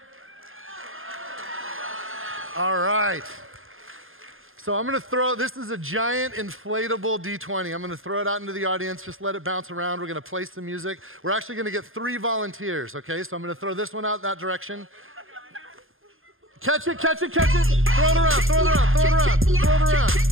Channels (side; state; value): left; late; 0.60 ms